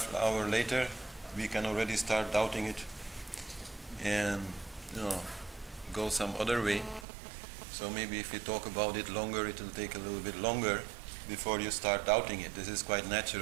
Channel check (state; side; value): drops out; left; at 7.1 s